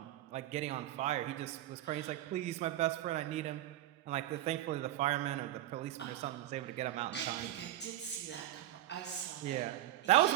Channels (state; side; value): quieter; left; 14.1 dB